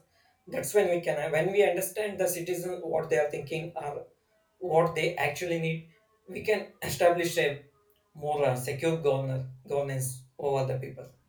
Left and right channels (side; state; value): both; identical; correlation 1.00